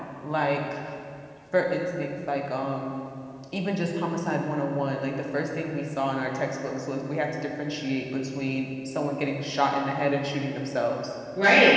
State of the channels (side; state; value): both; identical; correlation 1.00